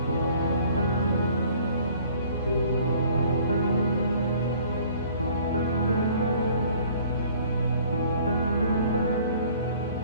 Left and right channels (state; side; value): inverted; both; correlation -0.54